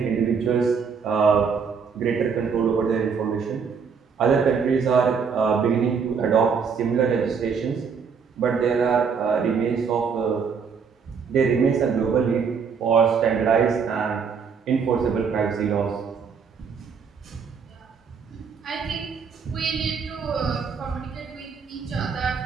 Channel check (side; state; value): left; quieter; 6.0 dB